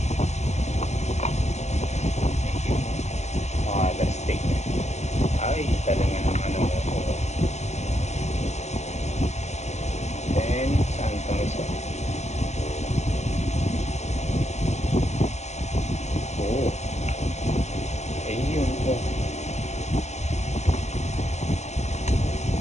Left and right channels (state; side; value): late; right; 0.33 ms